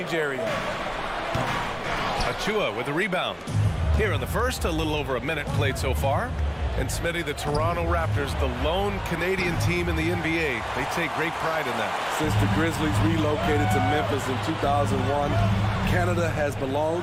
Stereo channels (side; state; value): both; identical; correlation 1.00